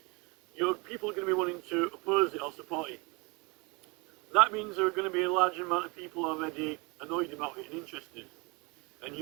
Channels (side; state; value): left; quieter; 28.3 dB